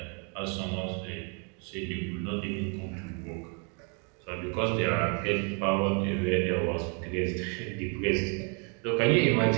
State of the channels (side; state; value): left; quieter; 37.4 dB